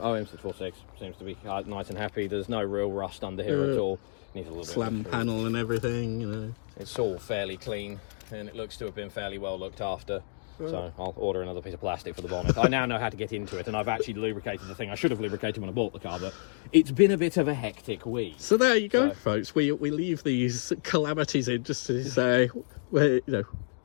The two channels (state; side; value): silent; right; digital silence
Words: seems to be nice and happy. There's no real rust under here at all. Needs a little slam panel and everything, you know. It's all fairly clean, and it looks to have been fairly well looked after. So I'll order another piece of plastic for the bonnet. I now know how to get into it, and I've actually lubricated the thing. I should have lubricated when I bought the car, but it's been a bit of a hectic week. So there you go, folks. We leave these calamities in just to say, well, you know,